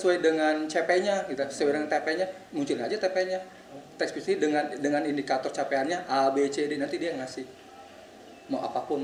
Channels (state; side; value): identical; both; correlation 1.00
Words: dengan CP-nya, gitu, sesuai dengan TP-nya, muncul aja TP-nya. Teks puisi dengan indikator capaiannya A, B, C, D, nanti dia ngasih. Mau apapun,